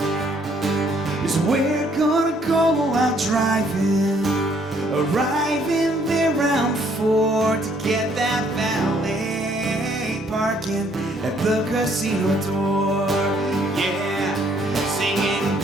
is where we're gonna go out driving, arriving there around 4 to get that valet parking at the casino door. Yeah, singing,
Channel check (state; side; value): normal; both; correlation 0.65